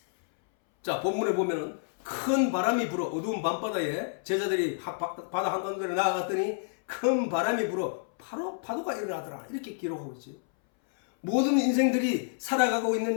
자, 본문에 보면은 큰 바람이 불어 어두운 밤바다에 제자들이 바다 한가운데로 나아갔더니 큰 바람이 불어 바로 파도가 일어나더라. 이렇게 기록하고 있지. 모든 인생들이 살아가고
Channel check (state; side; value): silent; right; 59 dB below the other